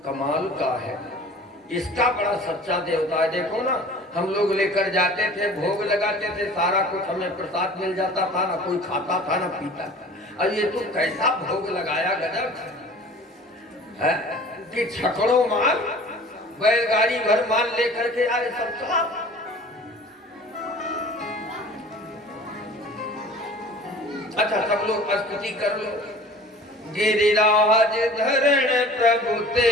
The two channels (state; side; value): normal; both; correlation 0.45